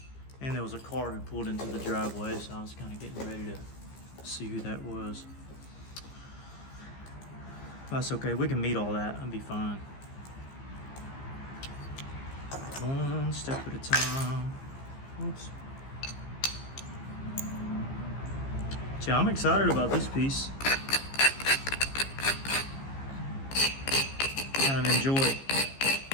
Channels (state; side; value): late; right; 15 ms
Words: And there was a car who pulled into the driveway, so I was kind of getting ready to see who that was. That's okay, we can meet all that, I'll be fine. One step at a time. Oops. Yeah, I'm excited about this piece. Kind of enjoy